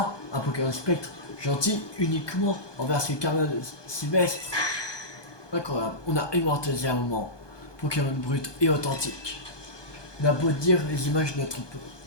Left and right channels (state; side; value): late; right; 1.2 ms